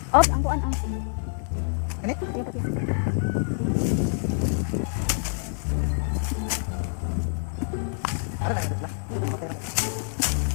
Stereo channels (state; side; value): silent; right; 60 dB below the other